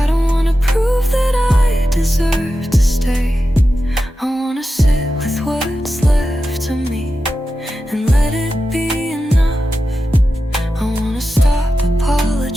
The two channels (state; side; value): normal; both; correlation 0.91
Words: don't wanna prove that I deserve to stay. I wanna sit with what's left of me and let it be enough. I wanna stop